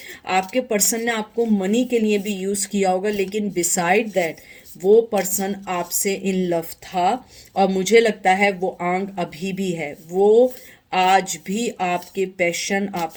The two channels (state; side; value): identical; both; correlation 1.00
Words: आपके पर्सन ने आपको मनी के लिए भी यूज़ किया होगा, लेकिन बिसाइड दैट वो पर्सन आपसे इन लव था। और मुझे लगता है वो आंग अभी भी है, वो आज भी आपके पैशन